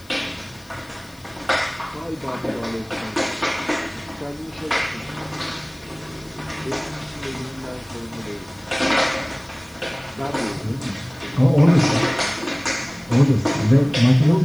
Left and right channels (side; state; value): left; noise; hiss, 26 dB below the sound